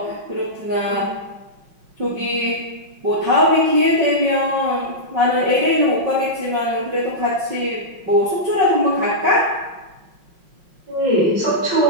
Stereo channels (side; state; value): left; late; 5.5 ms